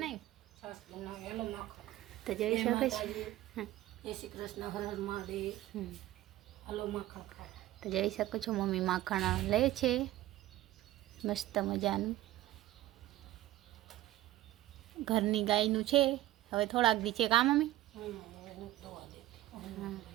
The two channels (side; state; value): left; quieter; 15.3 dB